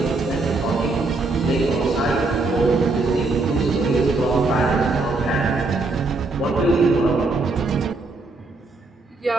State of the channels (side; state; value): left; quieter; 3.5 dB